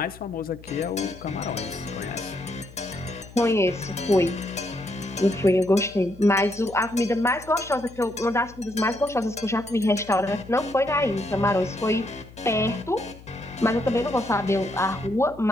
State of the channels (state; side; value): noise; left; hum, 20 dB below the sound